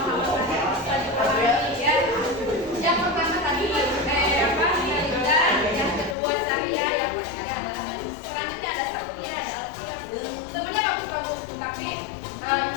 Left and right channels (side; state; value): right; drops out; at 6.2 s